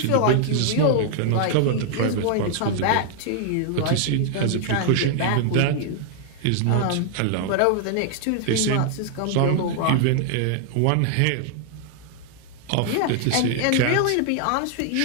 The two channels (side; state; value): both; different; correlation 0.00